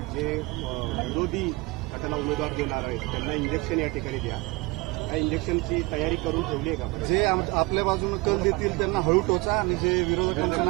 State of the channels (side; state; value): left; quieter; 23.9 dB